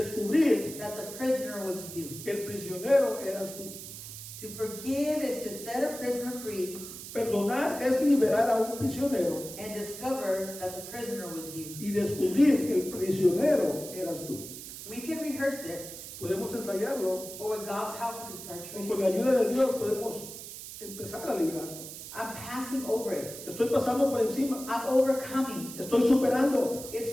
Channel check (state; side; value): noise; right; hiss, 11 dB below the sound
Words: that the prisoner was you. que el prisionero eras tú. To forgive is to set a prisoner free Perdonar es liberar a un prisionero and discover that the prisoner was you. y descubrir que el prisionero eras tú. We can rehearse it, Podemos ensayarlo or with God's help, we can start o con la tracing. ayuda de Dios podemos empezar a liberarlo. I'm passing over it. Estoy pasando por encima, I'm overcoming. estoy superando.